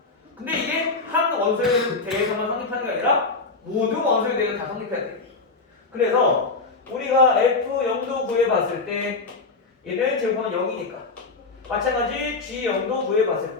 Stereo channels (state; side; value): quieter; right; 3.9 dB